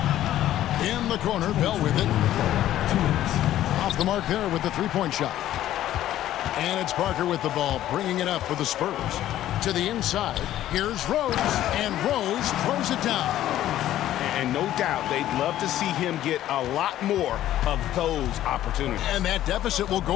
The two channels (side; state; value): right; quieter; 13.0 dB